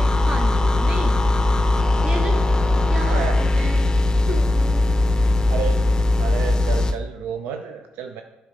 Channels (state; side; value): normal; both; correlation 0.92